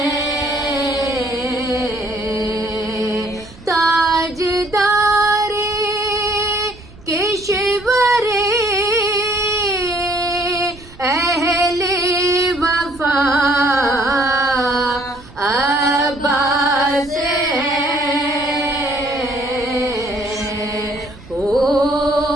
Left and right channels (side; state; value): right; noise; rumble, 21 dB below the sound